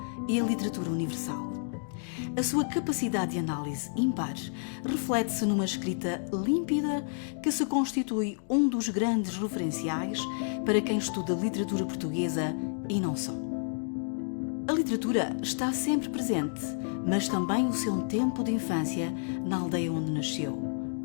e a literatura universal. A sua capacidade de análise ímpar reflete-se numa escrita límpida que se constitui um dos grandes referenciais para quem estuda literatura portuguesa e não só. A literatura está sempre presente, mas também o seu tempo de infância na aldeia onde nasceu.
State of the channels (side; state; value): right; silent; digital silence